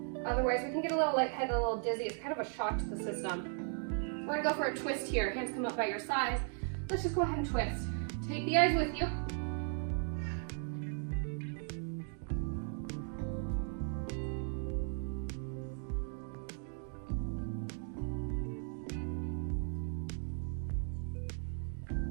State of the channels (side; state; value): left; silent; 53 dB below the other